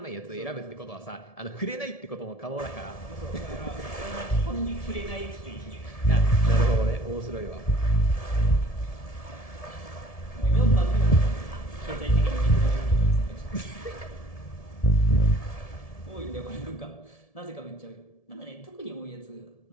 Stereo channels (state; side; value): late; right; 1.7 ms